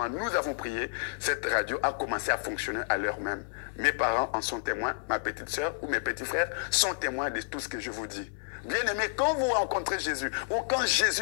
nous avons prié. Cette radio a commencé à fonctionner à l'heure même. Mes parents en sont témoins. Ma petite sœur ou mes petits frères sont témoins de tout ce que je vous dis. Bien-aimés, quand vous rencontrez Jésus ou quand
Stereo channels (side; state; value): right; silent; 58 dB below the other